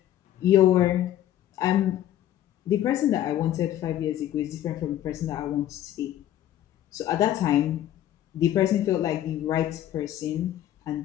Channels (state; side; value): quieter; right; 12.2 dB